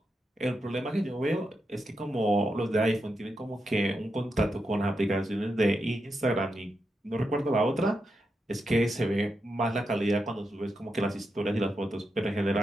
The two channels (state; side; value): normal; both; correlation 0.86